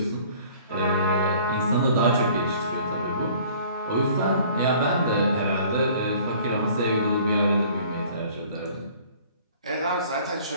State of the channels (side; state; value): both; inverted; correlation -0.52